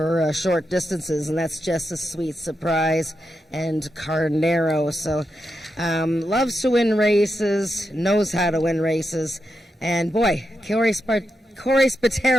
short distances, and that's Just a Sweet Surprise and Carnero. So loves to win races, knows how to win races, and boy, Corey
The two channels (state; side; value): normal; both; correlation 0.86